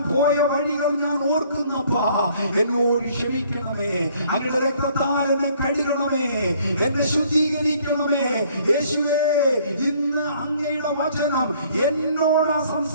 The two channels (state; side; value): inverted; both; correlation -0.60